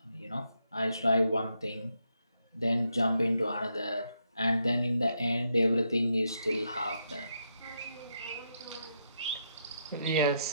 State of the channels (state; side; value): inverted; both; correlation -0.80